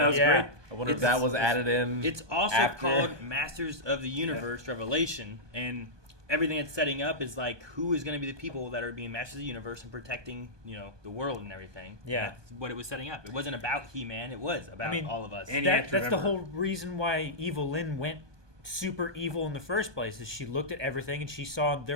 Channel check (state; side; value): late; left; 1.2 ms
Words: was great. I wonder if that was added in. It's also after. called Masters of the Universe Revelation, and everything it's setting up is like who is going to be the people that are being Masters of the Universe and protecting, the world and everything. Yeah. And that's what it was setting up. It wasn't about He-Man. It was about all of us. And that's the whole reason why Evelyn went super evil in the first place. Is she looked at everything and she saw